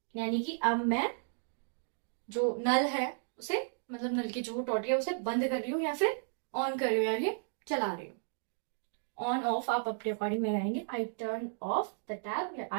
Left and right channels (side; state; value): left; silent; digital silence